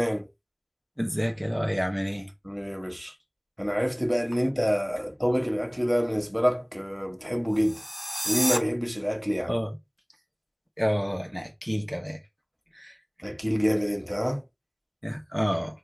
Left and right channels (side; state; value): both; identical; correlation 1.00